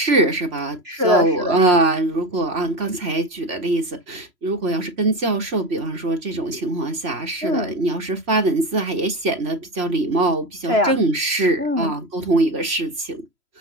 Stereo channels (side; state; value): left; late; 3.0 ms